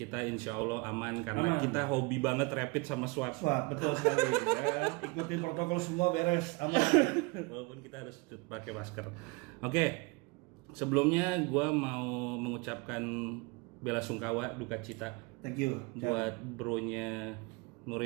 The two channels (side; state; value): left; quieter; 27.2 dB